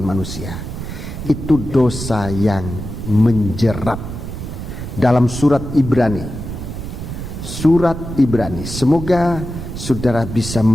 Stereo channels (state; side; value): noise; right; rumble, 8 dB below the sound